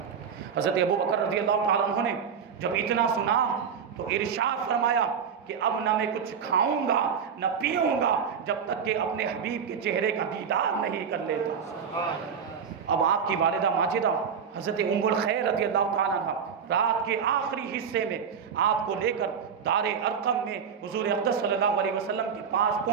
حضرت ابوبکر رضی اللہ تعالی عنہ نے جب اتنا سنا تو ارشاد فرمایا کہ اب نہ میں کچھ کھاؤں گا نہ پیوں گا جب تک کہ اپنے حبیب کے چہرے کا دیدار نہیں کر لیتا۔ اب آپ کی والدہ ماجدہ حضرت ام الخیر رضی اللہ تعالیٰ عنہ رات کے آخری حصے میں آپ کو لے کر دار ارقم میں حضور اقدس صلی اللہ علیہ وسلم کے پاس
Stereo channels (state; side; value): quieter; left; 6.9 dB